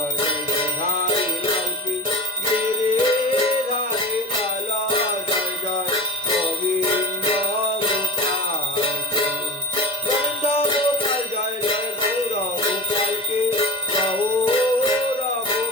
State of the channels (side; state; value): both; normal; correlation 0.29